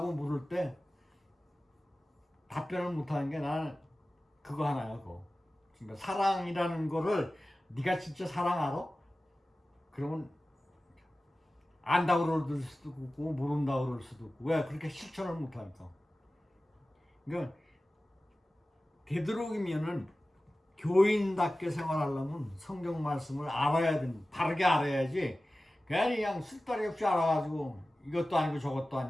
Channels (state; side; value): normal; both; correlation 0.96